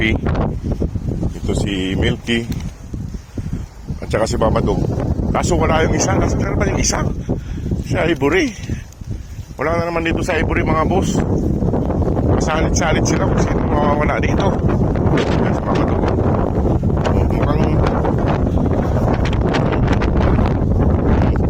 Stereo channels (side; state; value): both; identical; correlation 1.00